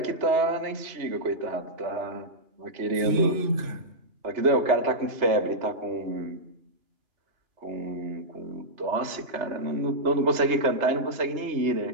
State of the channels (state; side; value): late; left; 3.3 ms